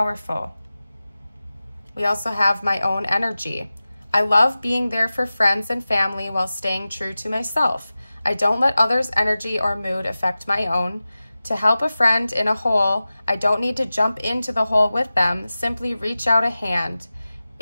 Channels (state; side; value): inverted; both; correlation -0.96